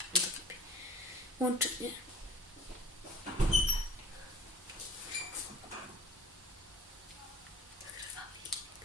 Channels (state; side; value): normal; both; correlation 0.46